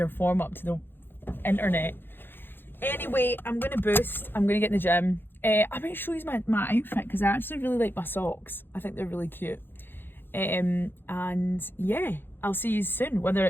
form up to the internet. Anyway, I'm going to boost. I'm going to get in the gym. I might show you my outfit, because I actually really like my socks. I think they're really cute. And yeah, I'll see you soon, whether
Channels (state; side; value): late; right; 0.10 ms